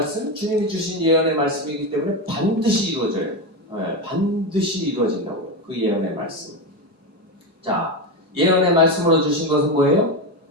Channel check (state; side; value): late; left; 4.7 ms